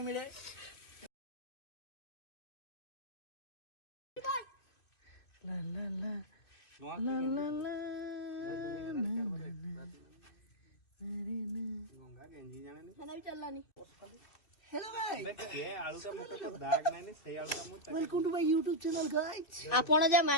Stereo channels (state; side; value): late; right; 2.6 ms